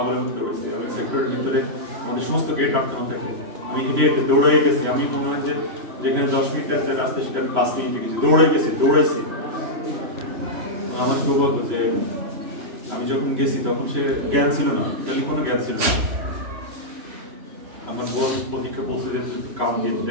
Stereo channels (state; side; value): late; left; 3.5 ms